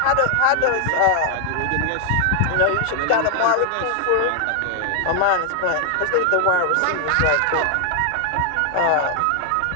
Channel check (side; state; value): both; different; correlation 0.00